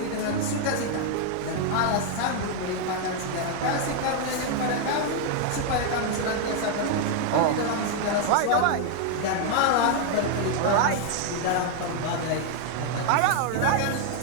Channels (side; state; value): both; different; correlation 0.00